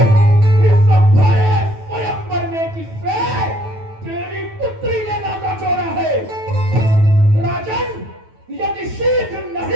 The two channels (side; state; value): left; late; 9.3 ms